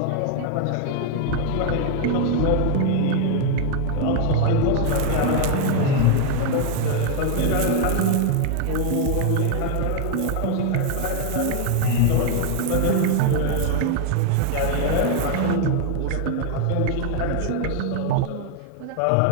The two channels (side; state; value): both; different; correlation 0.00